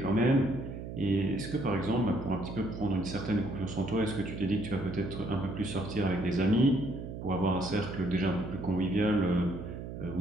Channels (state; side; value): noise; right; hum, 8 dB below the sound